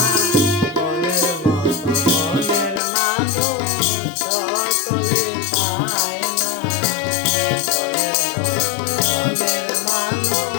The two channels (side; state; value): right; drops out; at 2.8 s